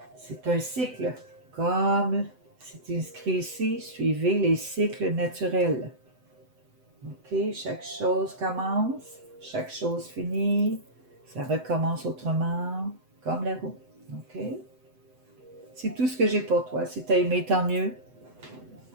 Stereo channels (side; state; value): left; late; 7.9 ms